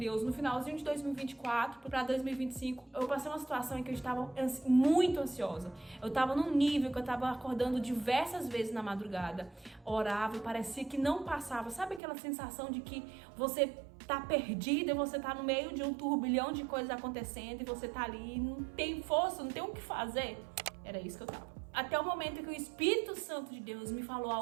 no finalzinho de 2024 para 2025. Eu passei uma situação em que eu estava muito ansiosa. Eu estava num nível que eu estava acordando diversas vezes na madrugada. Orava e parecia que não passava. Sabe aquela sensação de que você tá perdida e você tá no meio de um turbilhão de coisas acontecendo e você tá ali e não tem força, não tem o que fazer? Era isso que eu tava. Até o momento em que o Espírito Santo de Deus me falou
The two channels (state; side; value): drops out; left; at 12.0 s